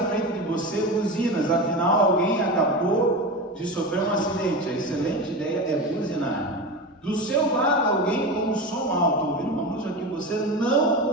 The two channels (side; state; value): both; normal; correlation 0.24